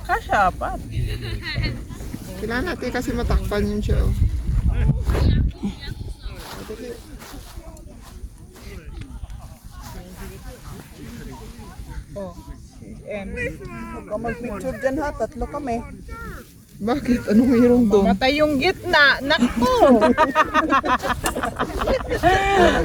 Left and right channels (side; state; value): both; identical; correlation 1.00